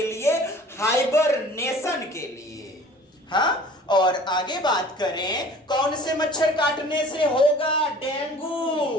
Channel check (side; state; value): both; normal; correlation 0.47